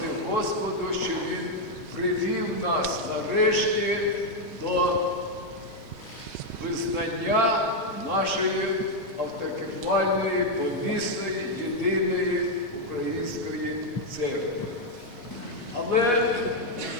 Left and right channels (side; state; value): both; normal; correlation 0.01